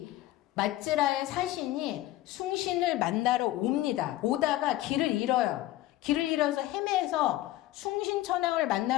맞지라의 사신이 숭신을 만나러 옵니다. 오다가 길을 잃어요. 길을 잃어서 헤매서 숭신천왕을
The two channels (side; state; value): right; quieter; 15.4 dB